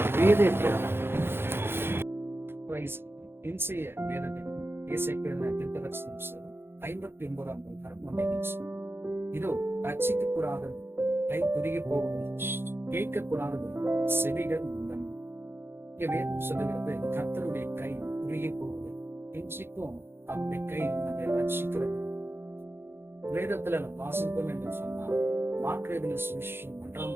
வேத தியானம். இன்றைய வேதத்தில் இசைக்கிழமை தீர்க்கதரிசனம் 59ஆம் அதிகாரம் இதோ ரட்சிக்கப்படாத கை குறுகி போவது, கேட்கக்கூடாதது செவிகள் முந்தன். இங்க வேதம் சொல்லுகிறது, கர்த்தருடைய கை குறுகி போவது. இன்றைக்கும் அவருடைய கை நம்மை ரட்சிக்கிறது. வேதத்துல நம்ம வாசிப்போம் என்று சொன்னால், மார்க்கு சுவிசேஷம் 1ஆம்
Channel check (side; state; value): left; late; 0.11 ms